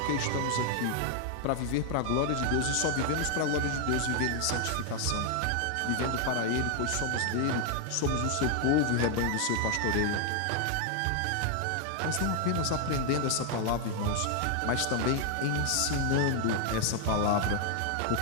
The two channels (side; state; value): both; different; correlation 0.00